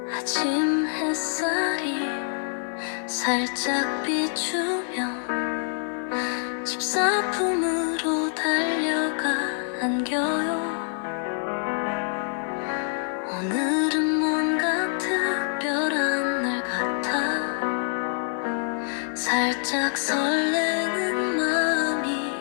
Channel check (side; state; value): right; silent; 55 dB below the other